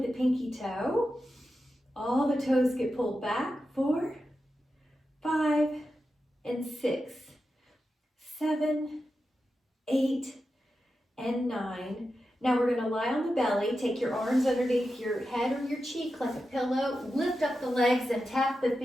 pinky toe. All the toes get pulled back. 4, 5, and 6, 7, 8, and 9. Now we're going to lie on the belly. Take your arms underneath your head or your cheek like a pillow. Lift up the legs and tap the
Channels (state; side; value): normal; both; correlation 0.90